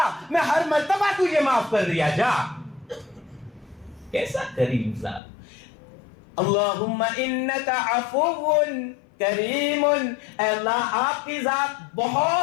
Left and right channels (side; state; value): right; drops out; at 5.2 s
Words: میں ہر مرتبہ تجھے معاف کر دیا. جا. کیسا کریم ذات. اللہم انکا عفو کریم، اے اللہ آپ کی ذات